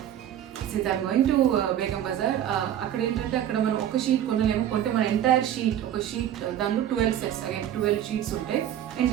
since I'm going to Begum Bazar, అక్కడ ఏంటంటే అక్కడ మనం ఒక షీట్ కొనలేము, కొంటే మన ఎంటైర్ షీట్, ఒక షీట్ దానిలో 12 sets, అగైన్ 12 sheets ఉంటాయి,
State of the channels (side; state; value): left; quieter; 10.9 dB